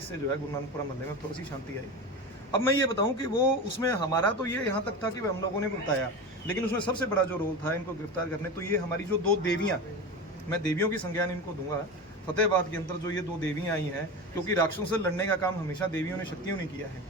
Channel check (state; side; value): normal; both; correlation 0.26